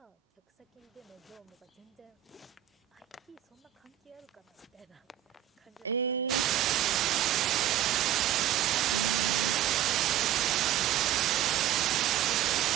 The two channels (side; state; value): left; quieter; 12.3 dB